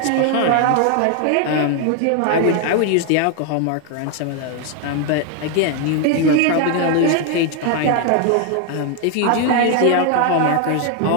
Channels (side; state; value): both; different; correlation 0.01